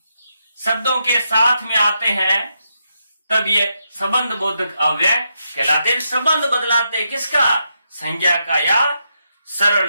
शब्दों के साथ में आते हैं, तब ये संबंध बोधक अव्यय कहलाते हैं। संबंध बदलाते किसका, संज्ञा का या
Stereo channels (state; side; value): inverted; both; correlation -0.82